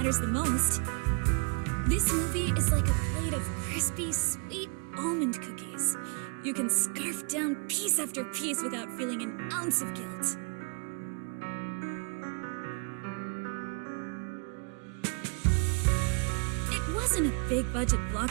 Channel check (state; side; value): quieter; left; 36.9 dB